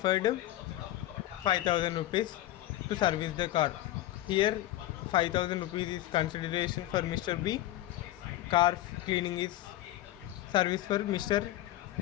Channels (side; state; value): right; quieter; 14.9 dB